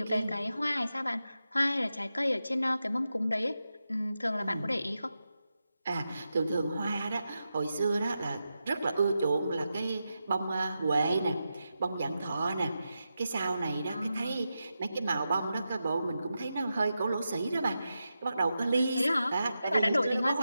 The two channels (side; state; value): both; inverted; correlation -0.89